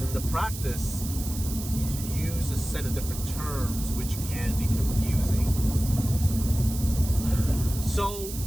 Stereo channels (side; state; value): right; noise; hiss, 10 dB below the sound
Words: in the practice, you use a set of different terms which can be confusing. So,